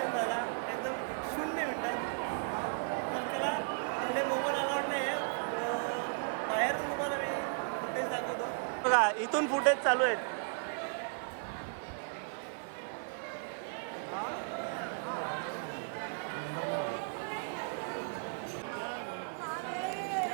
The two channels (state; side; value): silent; left; 54 dB below the other